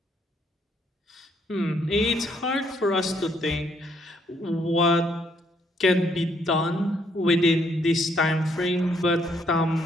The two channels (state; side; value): normal; both; correlation 0.70